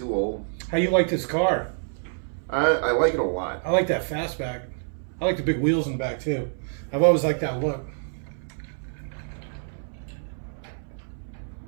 old. How you like this car? I like it a lot. I like that fastback. I like the big wheels in the back too. I've always liked that look.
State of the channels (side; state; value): left; silent; 60 dB below the other